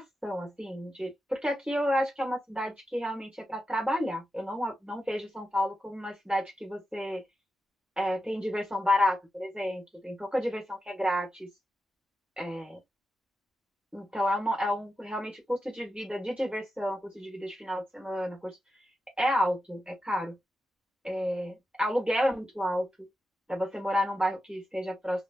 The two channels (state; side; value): normal; both; correlation 0.89